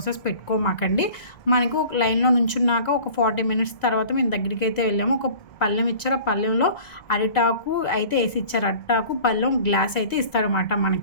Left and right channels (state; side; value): late; right; 1.9 ms